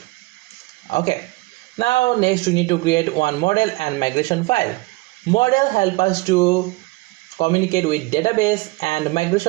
Okay, now next we need to create one model and migration file. Model help us to communicate with database, and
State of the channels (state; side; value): quieter; left; 22.7 dB